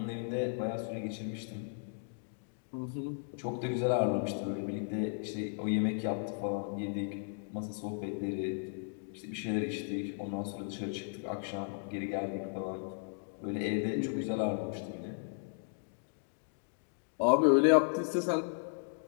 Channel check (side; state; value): right; silent; digital silence